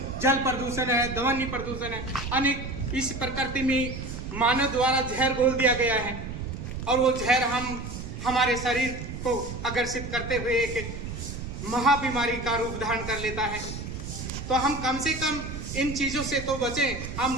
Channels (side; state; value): right; noise; rumble, 8 dB below the sound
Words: जल प्रदूषण है, ध्वनि प्रदूषण है, अनेक इस प्रकृति में मानव द्वारा जहर घोल दिया गया है, और वो जहर हमारे शरीर को आकर्षित करते हुए एक महाबीमारी का रूप धारण कर लेता है। तो हम कम से कम इन चीजों से तो बचें,